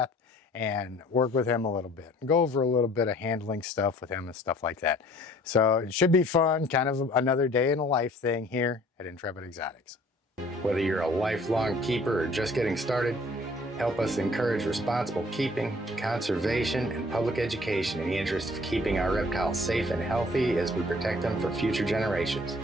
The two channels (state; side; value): normal; both; correlation 0.54